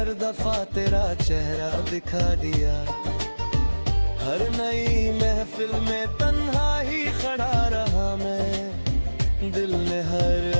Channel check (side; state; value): both; inverted; correlation -1.00